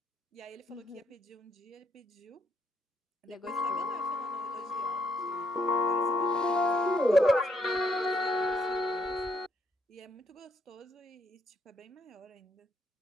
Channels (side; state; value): both; normal; correlation 0.72